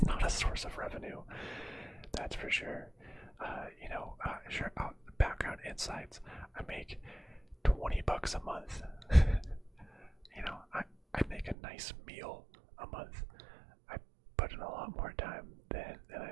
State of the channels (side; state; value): left; drops out; at 11.6 s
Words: not a source of revenue, that's for sure. You know, sure, background insights, I make $20 a month. You know, I make a nice meal a month. I put in a lot more time than